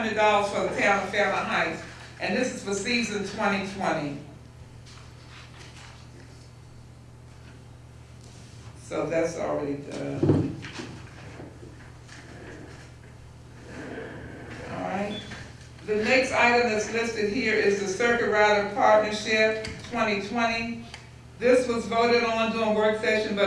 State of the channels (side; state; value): both; identical; correlation 1.00